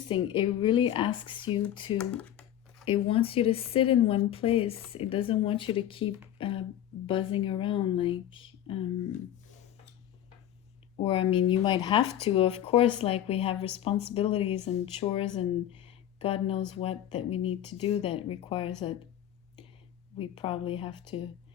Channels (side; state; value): right; quieter; 11.5 dB